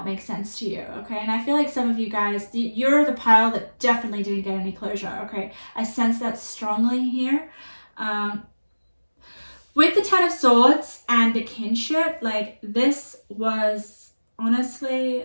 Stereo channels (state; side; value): inverted; both; correlation -1.00